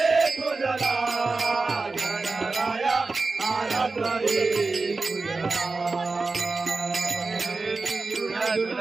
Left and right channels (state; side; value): quieter; left; 3.8 dB